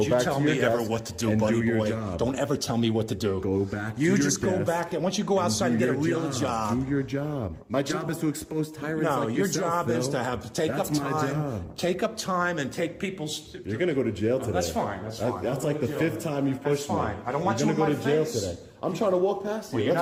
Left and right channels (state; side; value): identical; both; correlation 1.00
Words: you back tell to your me ever desk what to do, and buddy do your boy. job. Don't ever tell me what to do. Go back to You your just go desk back, and once you go outside and do get a your real job. Do your job. My job is to expose tyrants No, like your yourself, job is Phil. to have take That's up my time. job. Take up time and take people's. You're gonna go to jail today. That's fine. That's fine. That's I'll like go the to jail. 5th time you've pushed That's fine. me. I don't want You're you gonna in go my to jail face. today. I'm trying to walk past you. Well, you're